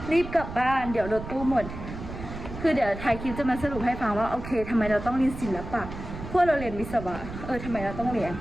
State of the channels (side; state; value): right; noise; rumble, 10 dB below the sound